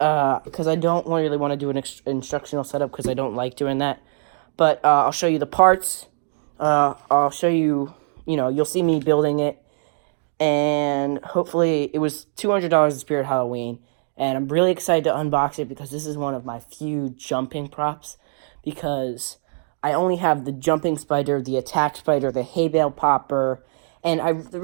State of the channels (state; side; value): silent; left; digital silence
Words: I don't really want to do an instructional setup because I don't like doing that. But I'll show you the parts. I'll show you, you'll see me building it, and hopefully it was $200 at Spirit Halloween, and I'm really excited to unbox it because this is one of my few jumping props, because I only have the jumping spider, the attack spider, the hay bale popper, and